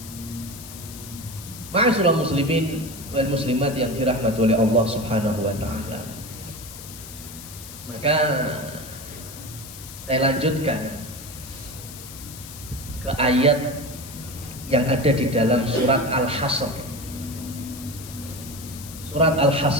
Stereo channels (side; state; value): left; noise; hiss, 14 dB below the sound